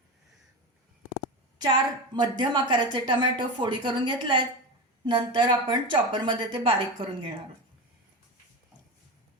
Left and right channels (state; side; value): normal; both; correlation 0.22